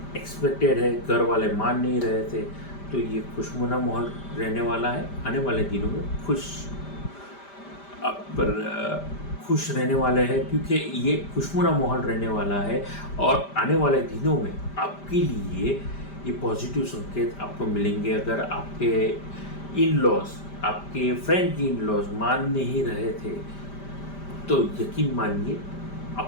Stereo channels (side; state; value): right; late; 5.1 ms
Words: एक्सपेक्टेड है, घर वाले मान नहीं रहे थे, तो ये खुशनुमा माहौल रहने वाला है। आने वाले दिनों में खुश रहने वाले हैं, क्योंकि ये खुशनुमा माहौल रहने वाला है। और आने वाले दिनों में आपके लिए ये पॉजिटिव संकेत आपको मिलेंगे। अगर आपके इन लॉज, आपके फ्रेंड की इन लॉज मान नहीं रहे थे, तो यकीन मानिए